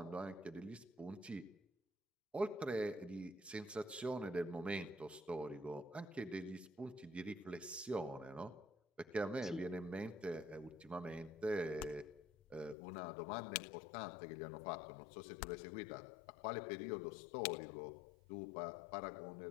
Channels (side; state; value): right; drops out; at 12.8 s